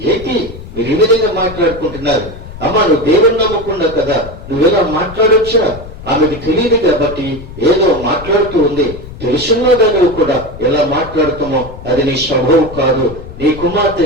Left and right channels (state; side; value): noise; left; rumble, 14 dB below the sound